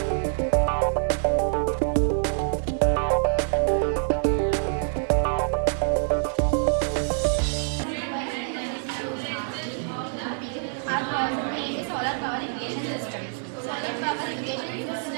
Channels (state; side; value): silent; left; digital silence